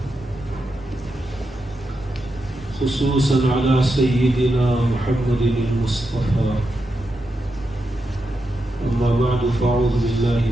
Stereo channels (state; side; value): normal; both; correlation 0.86